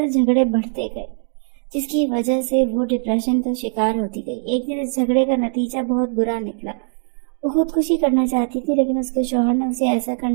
جھگڑے بڑھتے گئے جس کی وجہ سے وہ ڈپریشن کا شکار ہوتی گئی. ایک دن اس جھگڑے کا نتیجہ بہت برا نکلا. وہ خودکشی کرنا چاہتی تھی لیکن اس کے شوہر نے اسے ایسا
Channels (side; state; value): left; silent; digital silence